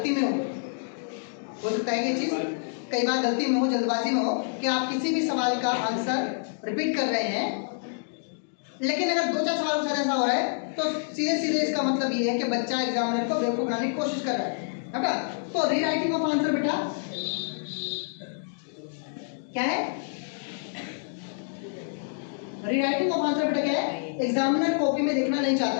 में हो सकता है कि ये चीज कई बार गलती में हो, जल्दबाजी में हो, कि आप किसी भी सवाल का आंसर रिपीट कर रहे हैं, लेकिन अगर 2-4 सवालों के साथ ऐसा हो रहा है तो सीधे सीधे इसका मतलब ये है कि बच्चा एग्जामिनर को बेवकूफ बनाने की कोशिश कर रहा है बेटा। तो रीराइटिंग ऑफ आंसर बेटा क्या है, रीराइटिंग ऑफ आंसर बेटा क्या है, एग्जामिनर कॉपी में देखना नहीं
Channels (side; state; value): right; silent; digital silence